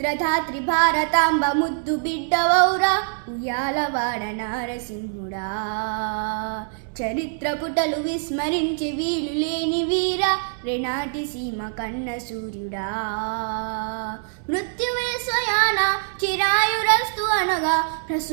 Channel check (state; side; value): silent; left; 63 dB below the other